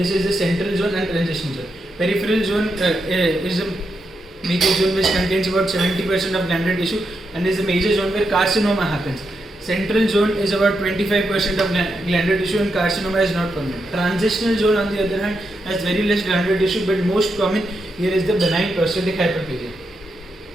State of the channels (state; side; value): normal; both; correlation 0.84